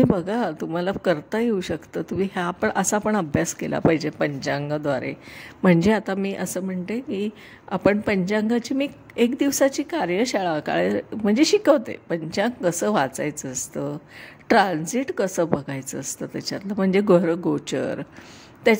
बघा, तुम्हाला करता येऊ शकतं. तुम्ही असा पण अभ्यास केला पाहिजे पंचांगाद्वारे. म्हणजे आता मी असं म्हणते की आपण पंचांगाची मी 1 दिवसाची कार्यशाळा म्हणजे शिकवते. पंचांग कसं वाचायचं असतं, ट्रान्झिट कसं बघायचं असतं त्याच्यातलं, म्हणजे गोचर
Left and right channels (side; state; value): both; identical; correlation 1.00